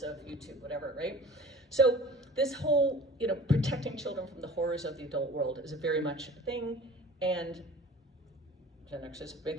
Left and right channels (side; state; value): both; normal; correlation 0.43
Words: of YouTube, whatever, right? So this whole, protecting children from the horrors of the adult world is very much a thing, and Gen Xers made